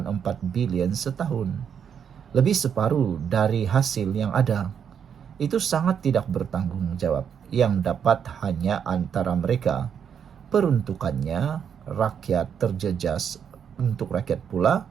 bilion setahun. Lebih separuh dari hasil yang ada. Itu sangat tidak bertanggung jawab. Yang dapat hanya antara mereka. Peruntukannya rakyat terjejas, untuk rakyat pula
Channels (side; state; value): left; quieter; 7.8 dB